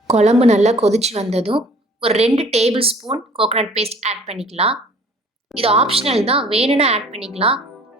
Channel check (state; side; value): normal; both; correlation 0.52